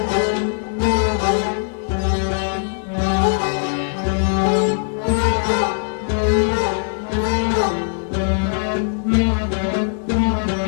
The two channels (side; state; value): right; silent; digital silence